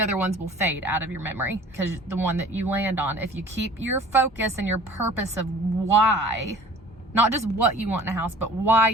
ones will fade out of your memory, because the one that you land on, if you keep your focus and your purpose of why, not just what you want in a house, but why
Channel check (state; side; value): normal; both; correlation 0.47